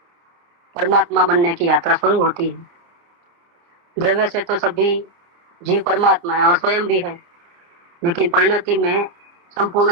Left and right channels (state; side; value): late; left; 30 ms